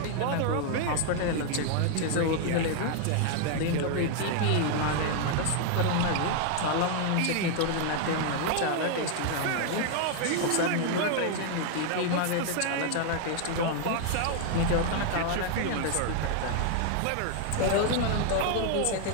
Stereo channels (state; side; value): different; both; correlation 0.00